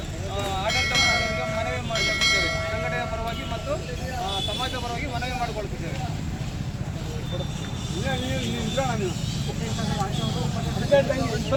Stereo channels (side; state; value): both; identical; correlation 1.00